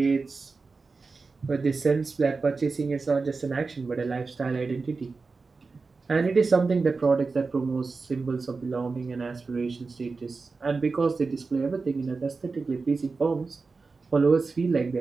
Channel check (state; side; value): quieter; left; 4.2 dB